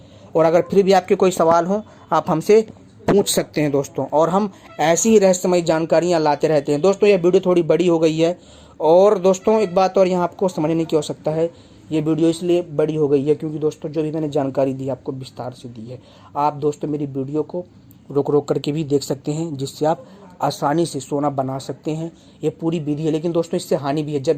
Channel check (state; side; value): identical; both; correlation 1.00